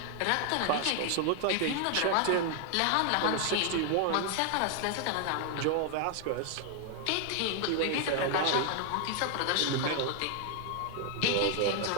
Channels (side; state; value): both; different; correlation 0.00